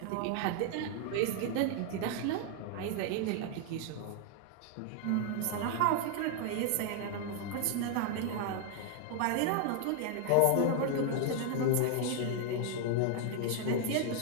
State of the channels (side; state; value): both; different; correlation 0.00